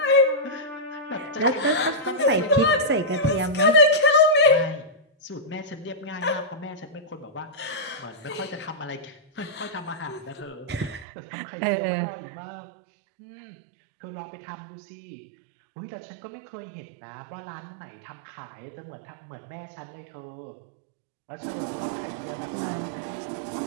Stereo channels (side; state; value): left; drops out; at 11.1 s